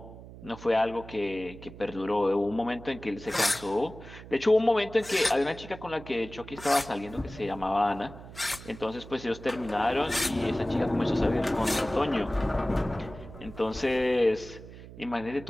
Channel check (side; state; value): right; noise; hum, 16 dB below the sound